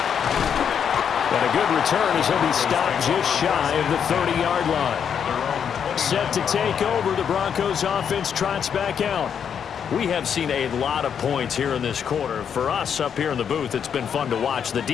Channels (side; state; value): right; quieter; 7.8 dB